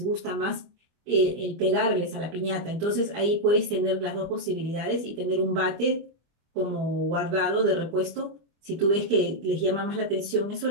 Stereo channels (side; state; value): left; late; 25 ms